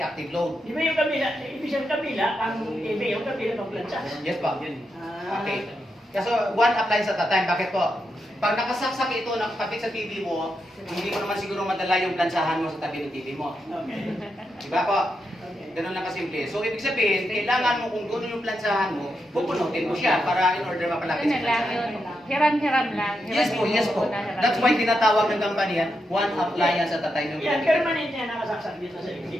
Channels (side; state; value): both; normal; correlation 0.85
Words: load. Di ba yung kabila, ibig sabihin kabila, ang TV, yung kabila ng plancha. Yes po. Ah. Okay. Kasi one appliance at a time. Bakit po? Pag nakasaksak ito, nakapit sa TV mo, hindi mo naman siguro madala yung plansahan mo sa tabi ng TV mo. Okay. Diba po? Ganun lang kasimple. So, ibig sabihin, kailangan mo kung gano'n yung plansahan mo, pupunutin mo siya para in order mapalapit Yun sa na lang plansahan. yun. Hiram-hiram lang. Yes po, yes po. That's why tinatawag ng company yan, one appliance at a time yung Yan, ginagawa. permanent yan nakasaksak dito sa exit.